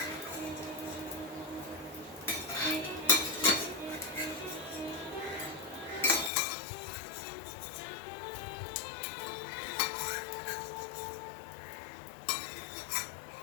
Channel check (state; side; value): drops out; right; at 6.3 s